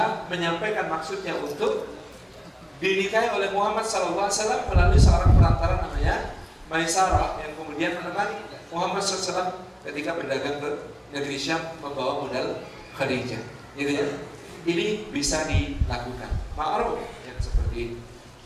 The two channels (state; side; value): identical; both; correlation 1.00